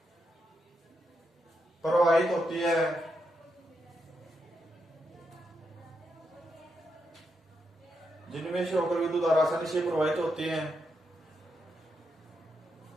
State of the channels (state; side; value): normal; both; correlation 0.83